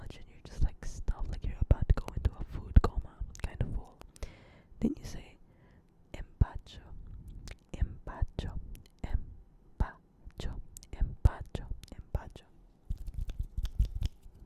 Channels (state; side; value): identical; both; correlation 1.00